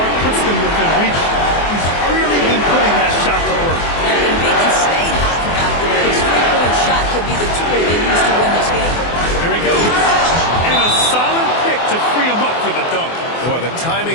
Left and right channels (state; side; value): late; right; 24 ms